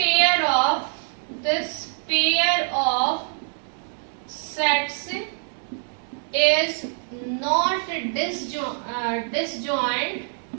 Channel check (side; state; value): left; silent; digital silence